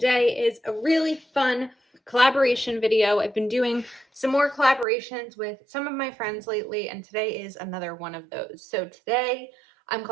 is a really fun collaboration video. I've been doing some more collaborations with some of my friends lately, and today is another one of those. So today I'm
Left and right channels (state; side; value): drops out; left; at 4.9 s